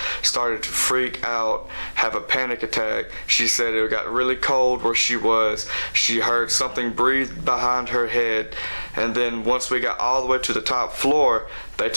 started to freak out, have a panic attack. She said it got really cold where she was. She heard something breathe behind her head, and then once we got all the way to the top floor, they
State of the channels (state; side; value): inverted; both; correlation -1.00